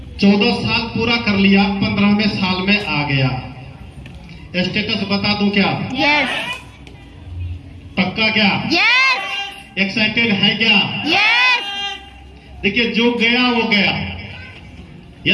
14 साल पूरा कर लिया, 15वें साल में आ गया स्टेटस। बता दूं क्या? यस। पक्का क्या? यस। एक्साइटेड है क्या? यस। देखिए जो गया वो गया।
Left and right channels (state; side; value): identical; both; correlation 1.00